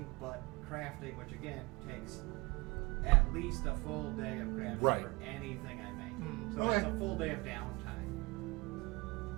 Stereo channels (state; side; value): quieter; left; 25.5 dB